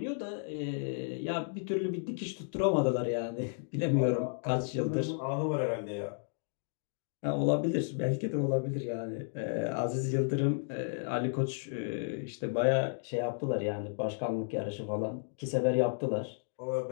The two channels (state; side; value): silent; right; digital silence